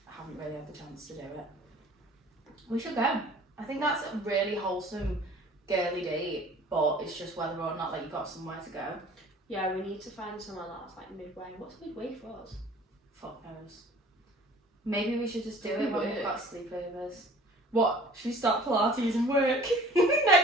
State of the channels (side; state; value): both; normal; correlation 0.48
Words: haven't really had the chance to do it. We should go. I think that's a really wholesome girly date, but it's just whether or not like you got somewhere to go. Yeah, we need to find somewhere that's like midway. What's midway for us? Fuck knows. Maybe we should just do it when Work. we've got sleepovers. What? Should we start Pilates and work